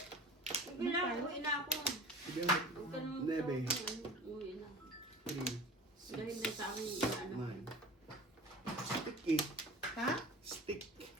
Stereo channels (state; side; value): normal; both; correlation 0.38